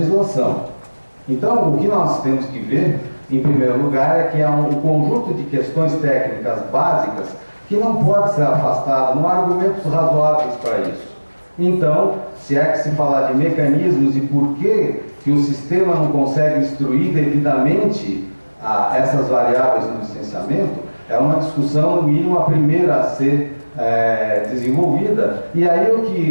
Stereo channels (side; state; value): both; inverted; correlation -1.00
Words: Então, o que nós temos que ver, em primeiro lugar, é que há um conjunto de questões técnicas básicas que não pode ser afastado, não há argumentos razoáveis para isso. Então, se é que se falar de mecanismos e por que o sistema não consegue instruir devidamente essas variáveis no licenciamento, é uma discussão, no mínimo, a primeira a ser desenvolvida. E aí o